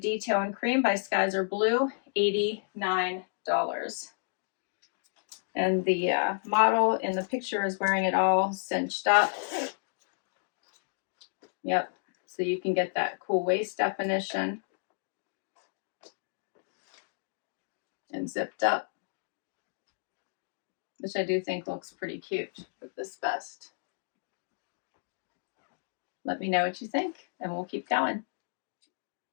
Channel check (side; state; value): right; silent; digital silence